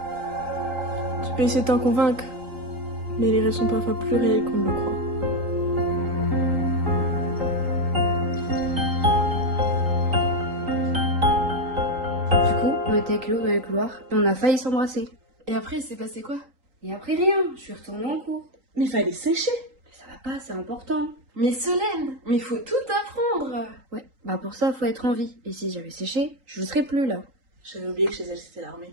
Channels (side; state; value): left; late; 3.8 ms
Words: Tu peux essayer de t'en convaincre. Mais les rêves sont parfois plus réels qu'on ne le croit. Du coup, on était avec Léo dans le couloir et on a failli s'embrasser. Et après, il s'est passé quoi? Et après rien, je suis retournée en cours. Mais fallait sécher. Mais ça va pas, c'est important. Mais Solène, mais il faut tout apprendre. Ouais, bah pour ça, faut être en vie. Et si j'avais séché, je ne serais plus là. J'avais oublié que chez elle c'était l'armée.